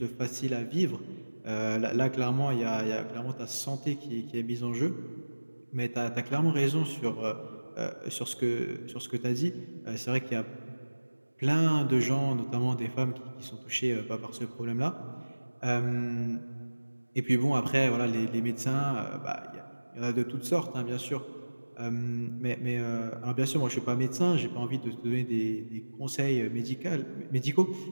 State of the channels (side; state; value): both; inverted; correlation -1.00